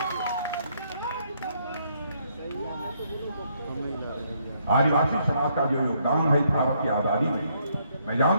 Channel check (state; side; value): inverted; both; correlation -0.71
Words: आदिवासी समाज का जो योगदान है भारत की आजादी में, मैं